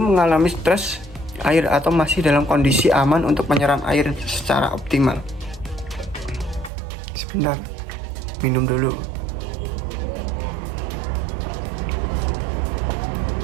mengalami stres air atau masih dalam kondisi aman untuk menyeram air secara optimal. Sebentar, minum dulu.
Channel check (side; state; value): left; drops out; at 6.7 s